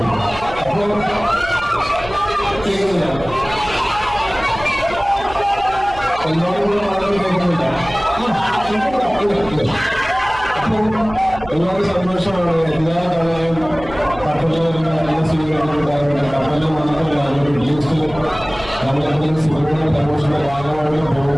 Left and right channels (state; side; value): noise; right; hum, 15 dB below the sound